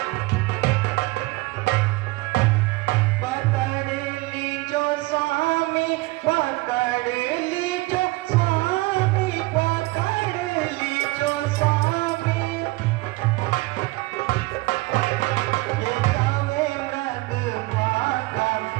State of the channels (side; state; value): left; quieter; 22.2 dB